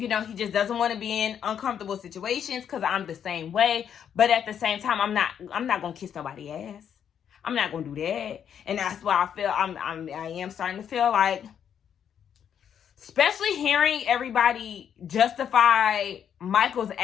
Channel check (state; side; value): quieter; right; 8.6 dB